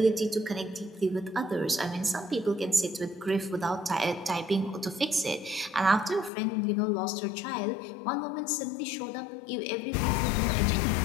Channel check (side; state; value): right; drops out; at 6.3 s